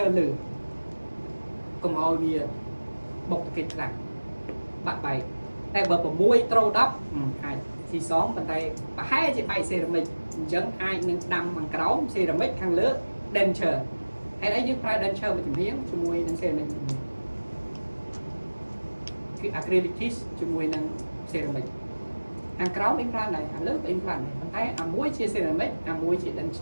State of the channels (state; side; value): inverted; both; correlation -1.00